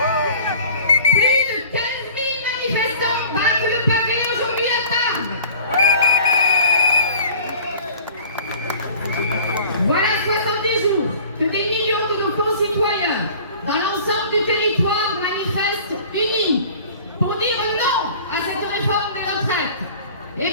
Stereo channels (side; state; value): both; inverted; correlation -0.45